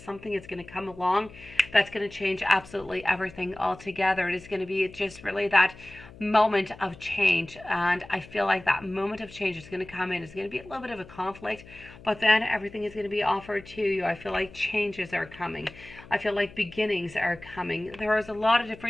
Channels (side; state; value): left; noise; hum, 19 dB below the sound